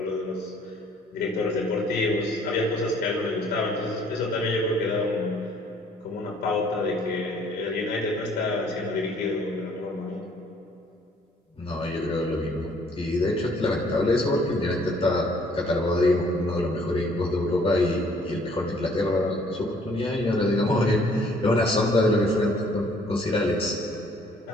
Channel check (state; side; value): normal; both; correlation 0.60